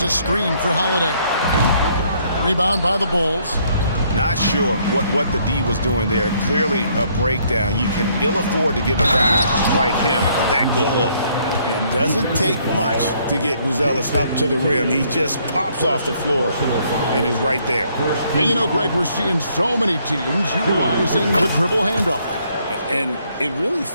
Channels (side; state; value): both; inverted; correlation -0.67